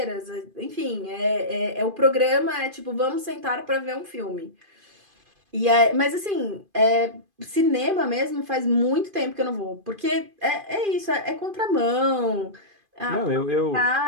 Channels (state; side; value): late; left; 2.5 ms